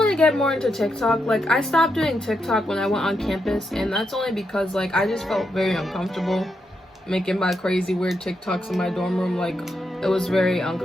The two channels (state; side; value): normal; both; correlation 0.83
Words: to get more into TikTok. Like, I stopped doing TikTok when I went on campus, and that's only because like I just felt very uncomfortable making my crazy weird TikToks in my dorm room. Like, it was very